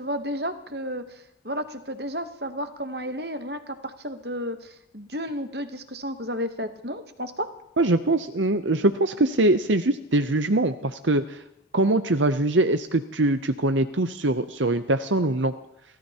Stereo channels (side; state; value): both; normal; correlation 0.21